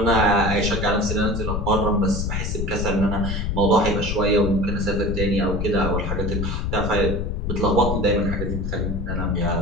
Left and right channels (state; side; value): noise; left; rumble, 2 dB below the sound